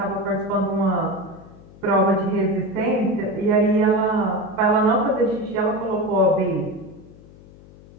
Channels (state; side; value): noise; left; hum, 22 dB below the sound